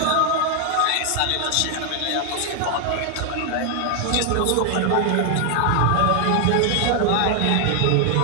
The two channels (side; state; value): both; different; correlation 0.00